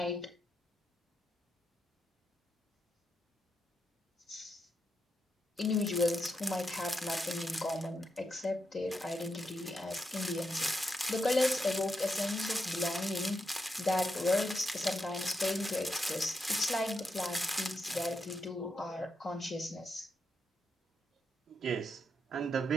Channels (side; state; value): both; normal; correlation 0.83